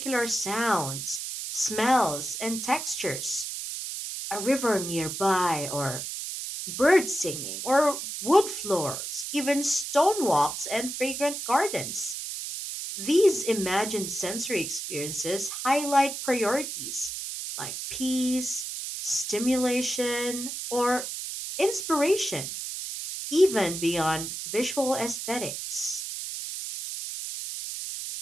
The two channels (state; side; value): noise; right; hiss, 6 dB below the sound